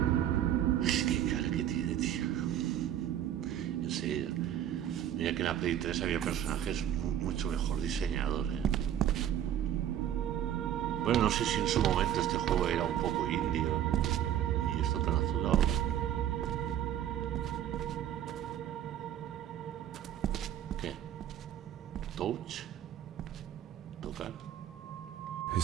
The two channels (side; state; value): left; quieter; 10.8 dB